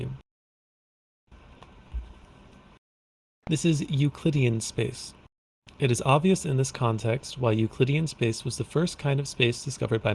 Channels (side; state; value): both; identical; correlation 1.00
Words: This is Euclidean space. It is obvious in this context why Euclidean space was the first kind of space discovered by